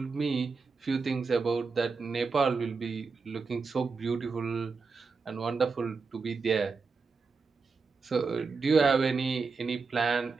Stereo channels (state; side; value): quieter; left; 4.6 dB